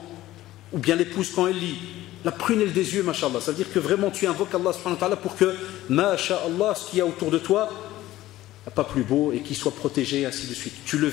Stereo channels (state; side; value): quieter; right; 15.5 dB